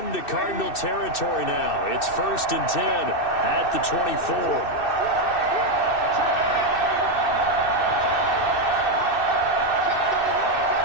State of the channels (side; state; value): right; late; 2.6 ms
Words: Cardinal territory now. It's 1st and 10 at the 24.